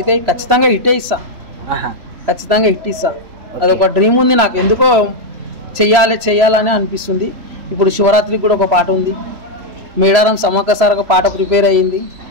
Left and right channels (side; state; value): left; late; 3.0 ms